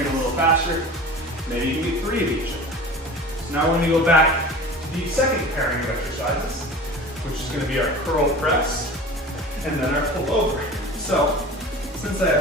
a little faster, maybe you can get 3 of each. So now we're going to go back to the second pairing of exercises, which is going to be our curl press and then our pull over. So since I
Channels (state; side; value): normal; both; correlation 0.37